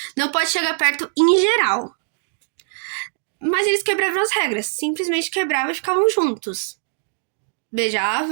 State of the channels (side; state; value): left; silent; digital silence